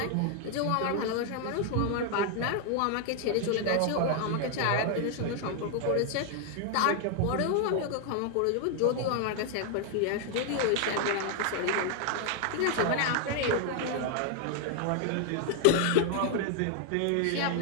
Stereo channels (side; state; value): both; different; correlation 0.00